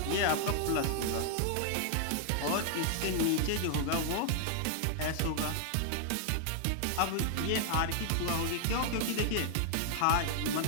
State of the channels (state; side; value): different; both; correlation 0.00